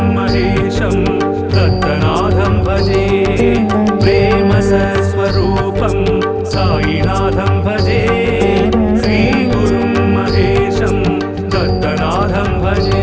మహేశం దత్తనాథం భజే. ప్రేమ సత్స్వరూపం సాయినాథం భజే, శ్రీ గురుం మహేశం దత్తనాథం భజే.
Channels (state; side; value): identical; both; correlation 1.00